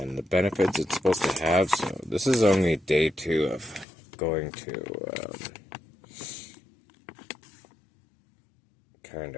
the benefits it's supposed to have. So this is only day 2 of going to kind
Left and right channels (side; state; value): right; drops out; at 3.9 s